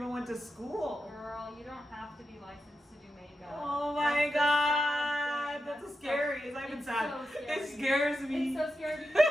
went to school? Girl, you don't have to be licensed to do makeup. Oh my god, that's scary. It's not even sad. So scary. It scares me. It's so scary because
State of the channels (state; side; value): normal; both; correlation 0.89